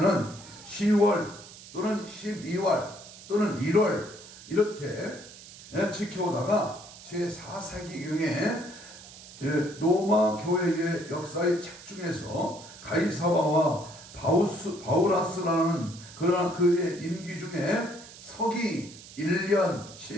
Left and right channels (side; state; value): right; noise; hiss, 17 dB below the sound